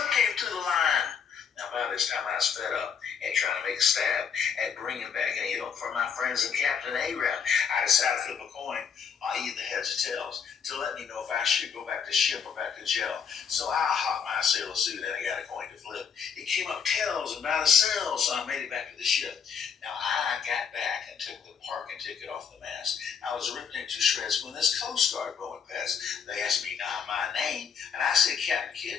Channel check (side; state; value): right; quieter; 6.8 dB